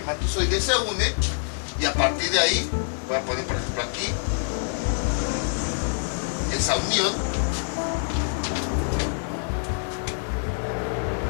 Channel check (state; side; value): silent; right; digital silence